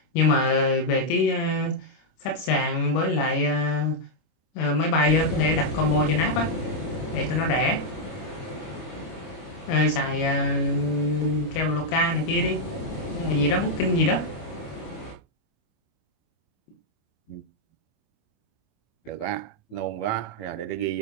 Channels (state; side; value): late; right; 25 ms